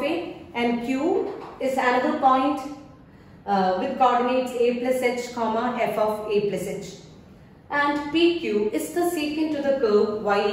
a, and Q is another point with coordinates a plus h comma f of a plus h. And PQ is the secant to the curve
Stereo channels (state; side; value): identical; both; correlation 1.00